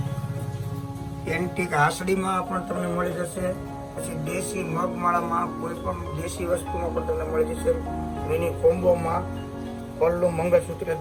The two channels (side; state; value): both; identical; correlation 1.00